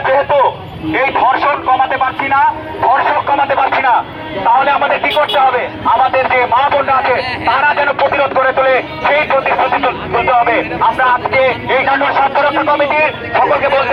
যেহেতু এই ধর্ষণ কমাতে পারছি না, ধর্ষক কমাতে পারছি না, তাহলে আমাদের কি করতে হবে? আমাদের যে মা বোনরা আছে তারা যেন প্রতিরোধ করে তোলে, সেই প্রতিশ্রুতি তুলতে হবে। আমরা আজকে এই নাটোর স্বাস্থ্যরক্ষা কমিটির সকলকে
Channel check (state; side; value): identical; both; correlation 1.00